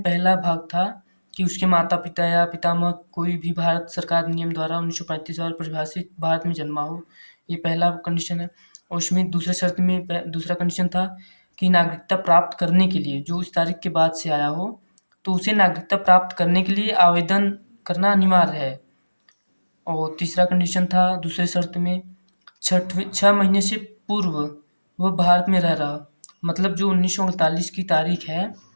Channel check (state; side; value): inverted; both; correlation -1.00